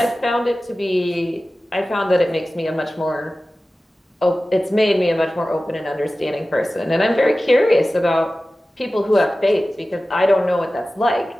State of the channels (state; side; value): normal; both; correlation 0.96